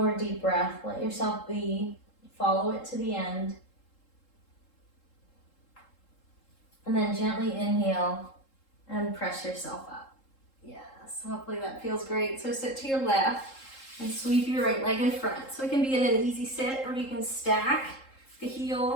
deep breath. Let yourself be. Follow it to the end. And then gently inhale and press yourself up. Yes, hopefully that feels great. So sit to your left. And sweep your right leg in front. So it can be in an easy sit, or you can stack the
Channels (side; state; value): right; late; 3.7 ms